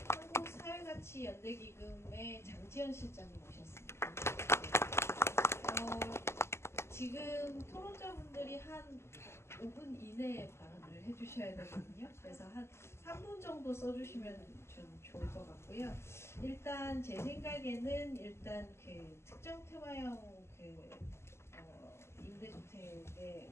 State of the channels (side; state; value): right; late; 0.13 ms